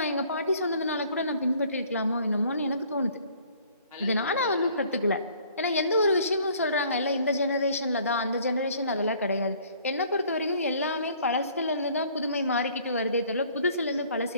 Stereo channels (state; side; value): inverted; both; correlation -0.57